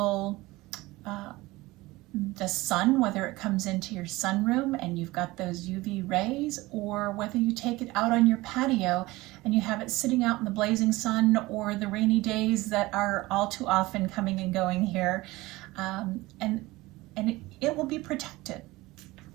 the sun, whether it comes into your sunroom and you've got those UV rays, or whether you take it out on your patio and you have it sitting out in the blazing sun or the rainy days that are all too often coming and going here, and it will be protected.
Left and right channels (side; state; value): left; quieter; 20.1 dB